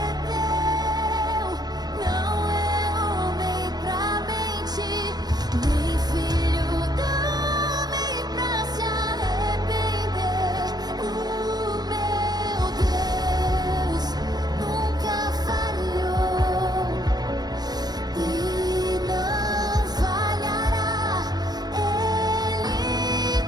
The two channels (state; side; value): late; left; 0.19 ms